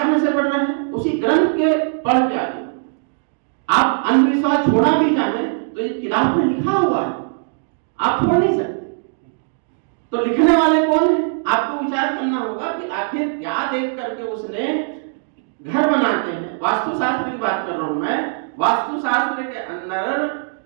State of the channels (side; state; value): left; silent; digital silence